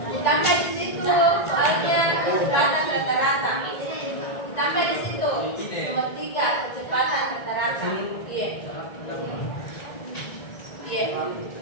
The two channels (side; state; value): right; late; 1.9 ms